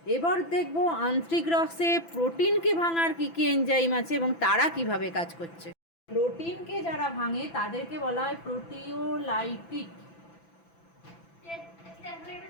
এবার দেখব আন্ত্রিক রসে প্রোটিনকে ভাঙার কী কী এনজাইম আছে এবং তারা কিভাবে কাজ করছে। প্রোটিনকে যারা ভাঙে তাদেরকে বলা হয় প্রোটিওলাইটিক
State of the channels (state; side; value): late; right; 6.0 ms